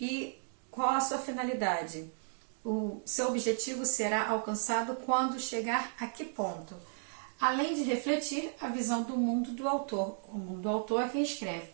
qual a sua finalidade? O seu objetivo será alcançado quando chegar a que ponto? Além de refletir a visão do mundo do autor. O mundo do autor é quem escreve.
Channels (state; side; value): silent; left; digital silence